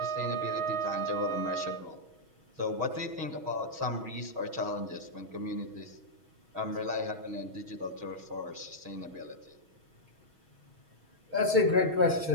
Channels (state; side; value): late; left; 6.3 ms